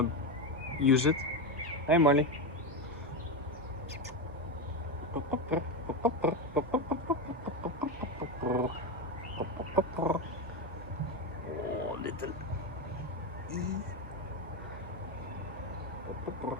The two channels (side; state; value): both; normal; correlation 0.13